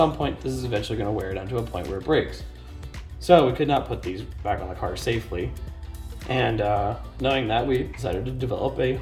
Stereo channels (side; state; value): both; identical; correlation 1.00